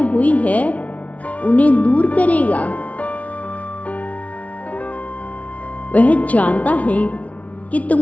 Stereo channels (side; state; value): right; late; 0.067 ms